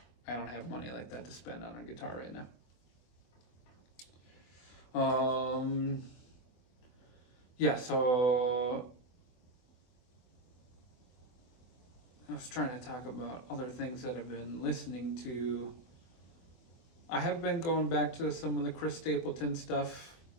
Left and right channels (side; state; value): right; late; 24 ms